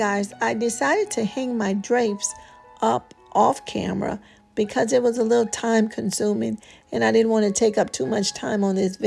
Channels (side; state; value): both; identical; correlation 1.00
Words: I decided to hang my drapes up off camera because it was a little time consuming and I didn't want to take up too much time on this